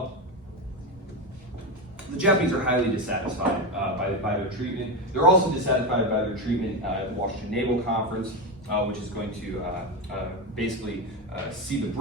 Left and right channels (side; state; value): both; normal; correlation 0.15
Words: the Japanese are highly dissatisfied by their treatment. They're also dissatisfied by their treatment at the Washington Naval Conference, which is going to basically see the